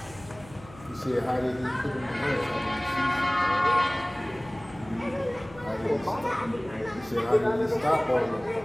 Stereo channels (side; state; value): left; noise; hum, 20 dB below the sound